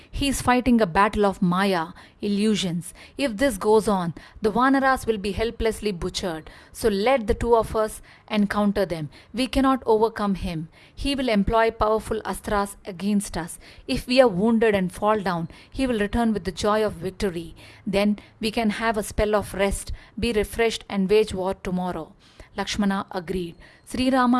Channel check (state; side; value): identical; both; correlation 1.00